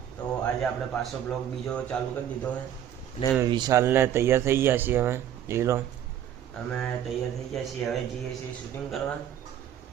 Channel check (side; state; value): left; quieter; 10.4 dB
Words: તો આજે આપણે પાછો બ્લોગ બીજો ચાલુ કરી દીધો છે ને વિશાલને તૈયાર થઈ ગયા છીએ અમે લીલો અમે તૈયાર થઈ ગયા છીએ હવે જઈએ છીએ શૂટિંગ કરવા।